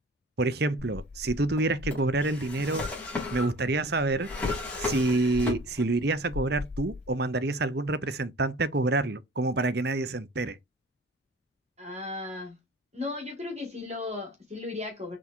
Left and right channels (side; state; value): both; normal; correlation 0.45